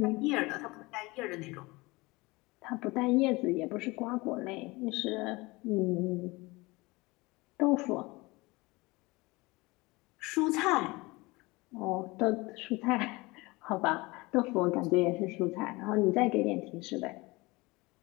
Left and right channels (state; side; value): quieter; right; 23.2 dB